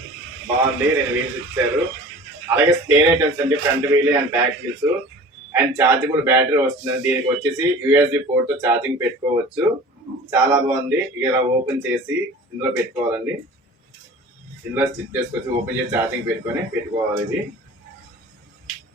బాగుంది. 2 వీల్స్ ఇచ్చారు. అలాగే స్పేర్ ఐటమ్స్ అండి. Front wheel and back wheels and chargeable battery వస్తుంది. దీనికి వచ్చేసి USB పోర్ట్ తో ఛార్జింగ్ పెట్టుకోవచ్చు. చాలా బాగుంది. ఇలా ఓపెన్ చేసి ఇందులో పెట్టుకోవాలండి. ఇందులో స్టిచ్ చేసుకోవచ్చు. ఓపెన్ చేసి ఛార్జింగ్ పెట్టుకోవాలి. ఇది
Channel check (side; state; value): both; normal; correlation 0.41